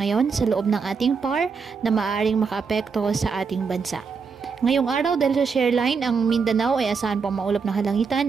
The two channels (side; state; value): left; quieter; 5.4 dB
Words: sa loob ng ating PAR na maaaring makaapekto sa ating bansa. Ngayong araw, dahil sa shareline, ang Mindanao ay asahan pang maulap na halangitan